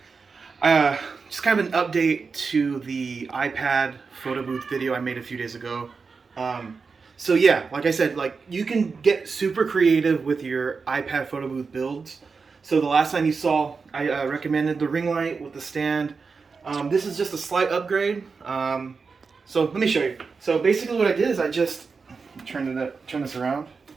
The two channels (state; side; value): quieter; left; 4.9 dB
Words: just kind of an update to the iPad photo booth video I made a few days ago. So yeah, like I said, you can get super creative with your iPad photo booth builds. So the last time you saw, I recommended the ring light with the stand. This is just a slight upgrade. So let me show you. So basically what I did is I just turn this around.